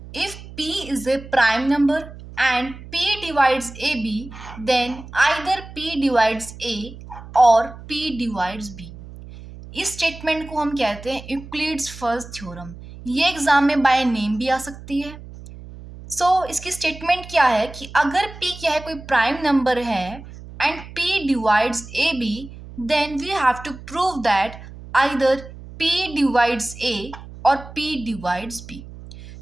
If p is a prime number and p divides ab, then either p divides a or p divides b. इस statement को हम कहते हैं Euclid's first theorem. ये exam में by name भी आ सकती है। इसकी स्टेटमेंट क्या है कि अगर p क्या है, कोई प्राइम नंबर है and p divides a b, then we have to prove that either p divides a और p डिवाइड्स b।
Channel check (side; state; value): right; noise; hum, 15 dB below the sound